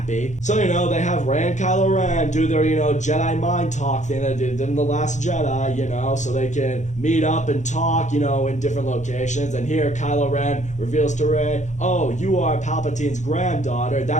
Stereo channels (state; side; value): late; right; 0.35 ms